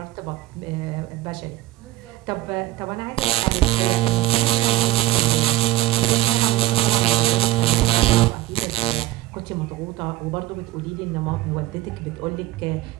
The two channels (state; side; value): quieter; left; 16.7 dB